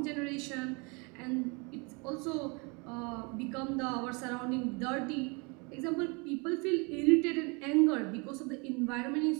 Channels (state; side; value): quieter; left; 30.8 dB